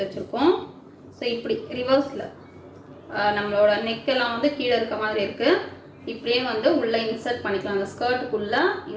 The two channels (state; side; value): identical; both; correlation 1.00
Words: வச்சுருக்கோம். ஸோ இப்படி ரிவர்ஸில் நம்மளோட நெக்கெல்லாம் வந்து கீழே இருக்க மாதிரி இருக்குது. இப்படியே வந்து உள்ளே இன்சர்ட் பண்ணிக்கலாம். அந்த ஸ்கர்ட்டுக்குள்ளே